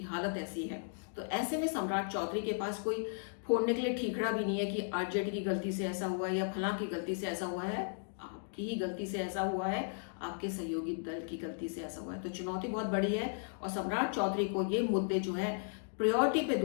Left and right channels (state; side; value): silent; right; digital silence